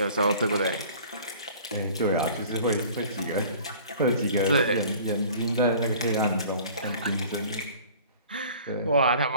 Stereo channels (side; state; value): both; inverted; correlation -0.47